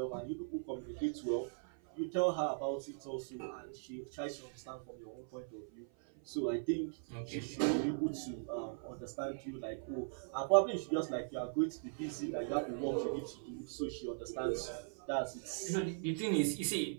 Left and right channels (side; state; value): left; silent; 51 dB below the other